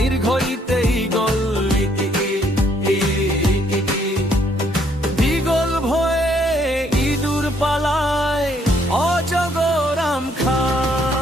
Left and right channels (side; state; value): both; normal; correlation 0.68